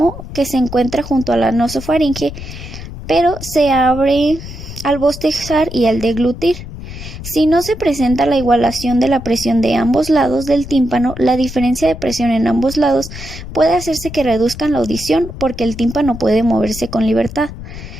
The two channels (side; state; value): left; noise; rumble, 11 dB below the sound